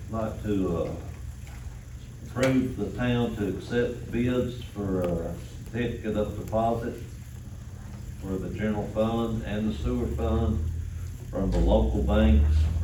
like to, approve the town to accept bids for a certificate of deposit for the general fund and the sewer fund from the local banks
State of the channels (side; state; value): both; identical; correlation 1.00